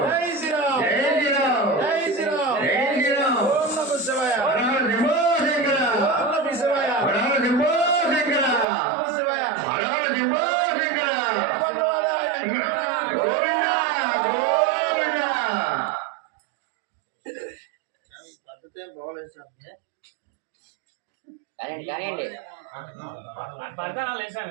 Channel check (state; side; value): drops out; left; at 8.7 s